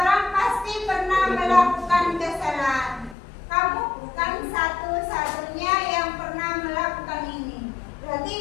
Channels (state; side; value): drops out; right; at 3.2 s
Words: pasti pernah melakukan kesalahan. Kamu bukan satu-satunya yang pernah melakukan ini. Berarti